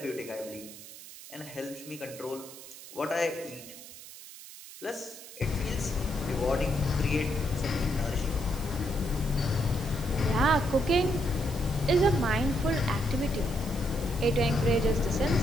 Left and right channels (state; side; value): noise; right; hiss, 15 dB below the sound